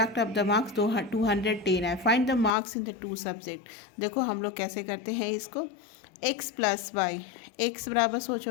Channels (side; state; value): right; drops out; at 2.6 s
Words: ऑफ द मार्क्स 210 है। Find the marks in the 2 subject. देखो हम लोग कैसे करते हैं इसको, x प्लस वाई। एक्स बराबर